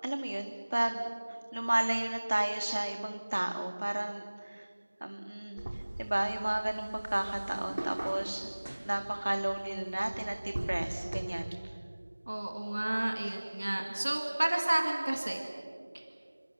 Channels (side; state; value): both; inverted; correlation -1.00